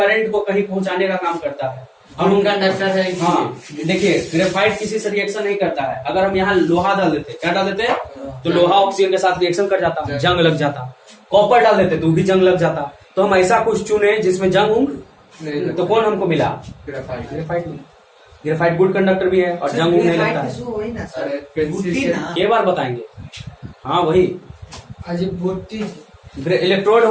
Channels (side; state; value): both; identical; correlation 1.00